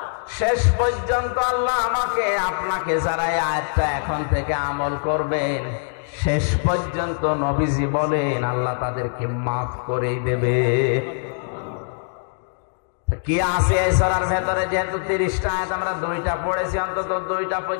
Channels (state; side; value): silent; right; digital silence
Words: শেষ পর্যন্ত আল্লাহ আমাকে আপনাকে যারা এই আয়াতটা এখন থেকে আমল করবেন, শেষ পর্যন্ত নবীজি বলেন আল্লাহ তাদেরকে মাফ করে দেবে। কি আছে এই সূরার ভেতরে? যেহেতু 30টা আয়াত আমরা 2টা পড়েছি, অন্তত 2টা